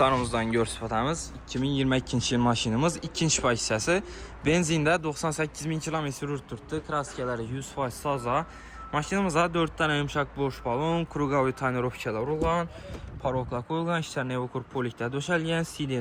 görsüfatamiz. 2022 yıl maşinimiz, ikinci pay hissəsi. Benzinde 98.000 km yürütdü. Kraskeleri 100% saza. Maşinimizə 4 tane yumuşak boş balon, krugovoy tonirovkalar ulan, paroklar koyulgan, işler nevokur polikdə döşəlgən,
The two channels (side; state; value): both; identical; correlation 1.00